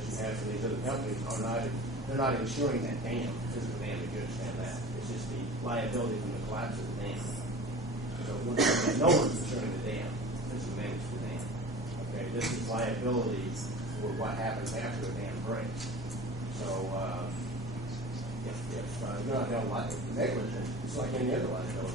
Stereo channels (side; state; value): both; normal; correlation 0.37